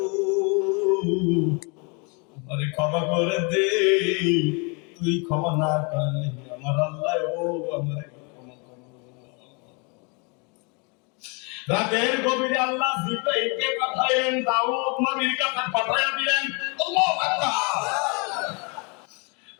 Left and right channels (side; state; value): right; quieter; 32.7 dB